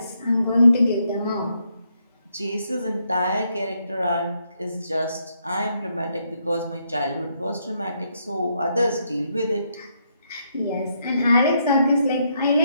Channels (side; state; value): both; inverted; correlation -0.76